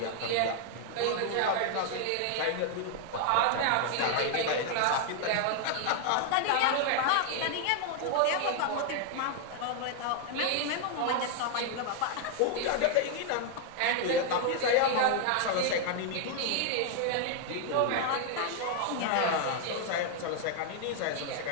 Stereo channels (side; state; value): both; different; correlation 0.00